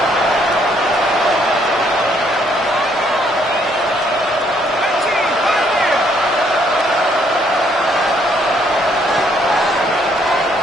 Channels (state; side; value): normal; both; correlation 0.68